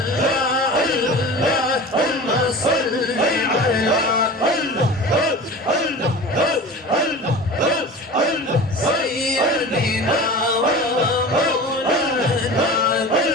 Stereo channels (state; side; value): normal; both; correlation 0.35